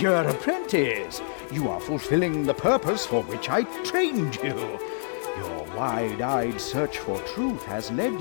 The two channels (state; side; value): silent; right; digital silence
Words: apprentice, you are fulfilling the purpose for which I trained you. Your wide-eyed search for truth has led